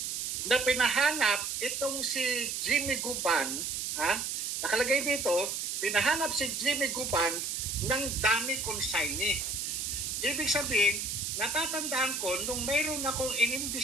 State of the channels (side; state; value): right; noise; hiss, 2 dB below the sound